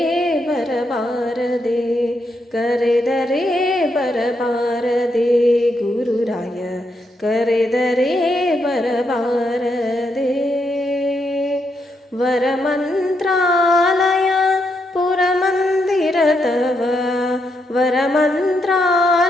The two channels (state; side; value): normal; both; correlation 0.80